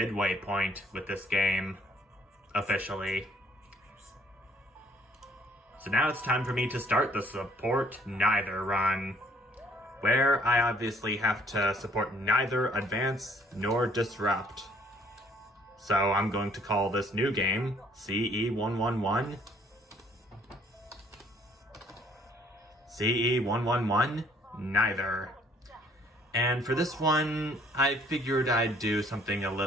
point with this game, officially. So now it's time for me to start the Support Neither run, where I obviously have to support neither Advance nor Disrupt. So I'm going to call this new game CE111. CE111 Neither. And for this one, I figured I'd do something a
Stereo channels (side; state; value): both; normal; correlation 0.62